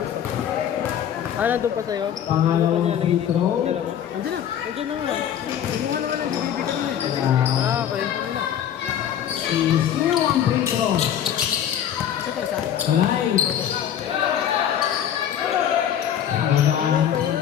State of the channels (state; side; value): quieter; right; 9.7 dB